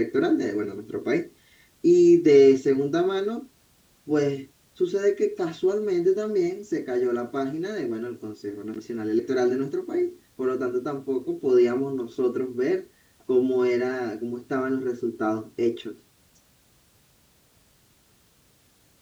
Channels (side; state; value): both; identical; correlation 1.00